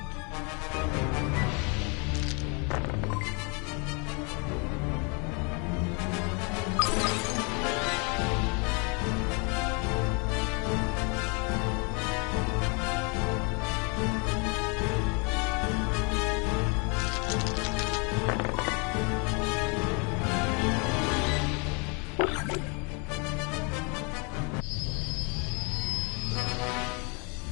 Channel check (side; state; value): right; quieter; 33.1 dB